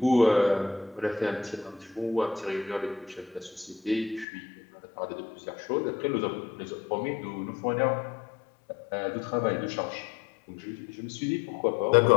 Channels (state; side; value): drops out; right; at 4.2 s